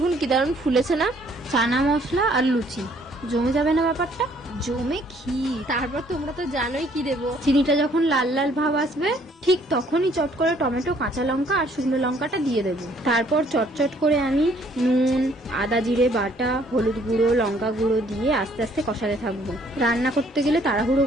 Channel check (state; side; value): normal; both; correlation 0.63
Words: কি দারুণ ফুলেছে না? চানা মশলা আর লুচি, জমে যাবে না ব্যাপারটা? জমে ক্ষীর। তারপর তোমরা তো জানোই কি দেবো। চিনিটা যখন লাল লাল ভাব আসবে, ঠিক তখনই চট করে টমেটো, কাঁচা লঙ্কা আর শুকনো লঙ্কাটা দিয়ে দেবো। তারপর চটচট করে আমি নুন, আদা জিরে বাটা, হলুদ গুঁড়ো, লঙ্কা গুঁড়ো দিয়ে আস্তে আস্তে কষাতে থাকবো। রান্না করতে গেলে তাড়াহুড়ো